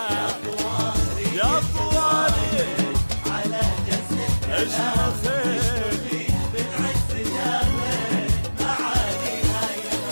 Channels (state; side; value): inverted; both; correlation -1.00